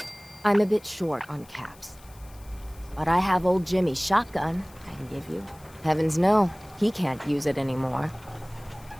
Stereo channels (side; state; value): left; noise; hiss, 25 dB below the sound